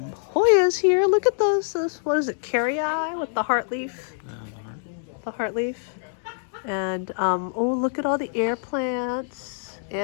Hoyas here. Look at those what is it, carry-eye with the heart leaf? The heart leaf. And oh, look at all the air plants,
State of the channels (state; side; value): silent; right; digital silence